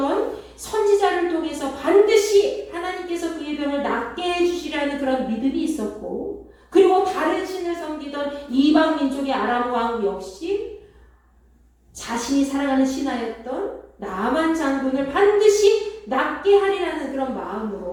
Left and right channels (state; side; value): identical; both; correlation 1.00